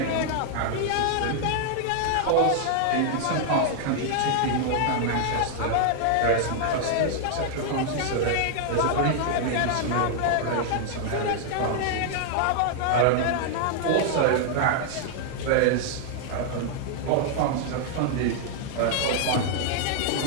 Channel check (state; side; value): different; both; correlation -0.01